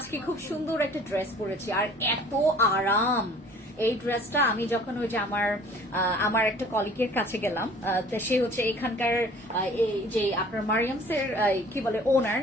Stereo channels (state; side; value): normal; both; correlation 0.51